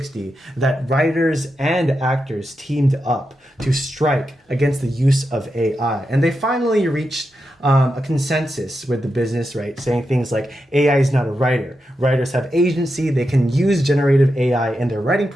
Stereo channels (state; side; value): normal; both; correlation 0.87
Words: that writers and actors teamed up to strike against the use of AI. And they finally reached a consensus with the business, right? Saying things like AI is not a writer. Writers have agency. They can use generative AI in their writing